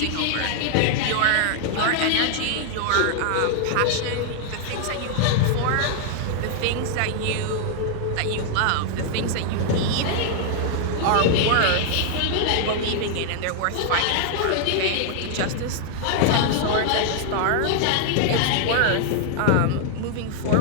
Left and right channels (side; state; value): both; different; correlation 0.00